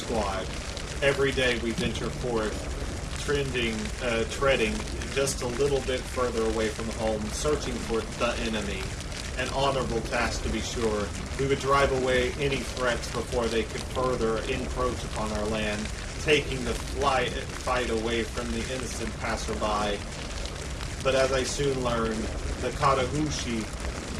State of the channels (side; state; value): both; identical; correlation 1.00